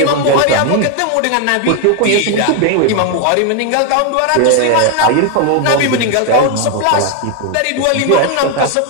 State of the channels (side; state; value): both; different; correlation 0.01